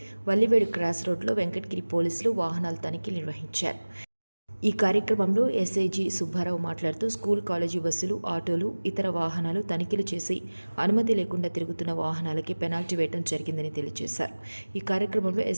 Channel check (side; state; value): both; inverted; correlation -1.00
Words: వల్లివేడు క్రాస్ రోడ్లో వెంకటగిరి పోలీసులు వాహనాల తనిఖీ నిర్వహించారు. ఈ కార్యక్రమంలో ఎస్ఐజీ సుబ్బారావు మాట్లాడుతూ స్కూల్ కాలేజీ బస్సులు, ఆటోలు, ఇతర వాహనాలు తనిఖీలు చేసి అనుమతి లేకుండా తిరుగుతున్న వాహనాలకి పెనాల్టీ వేయడం జరిగిందని తెలియజేశారు. ఈ కార్యక్రమంలో